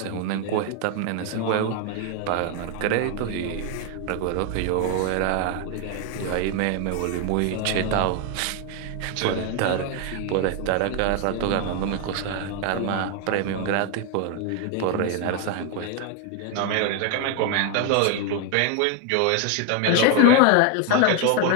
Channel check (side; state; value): both; different; correlation 0.01